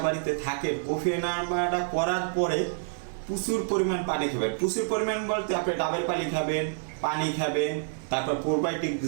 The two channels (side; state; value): left; silent; digital silence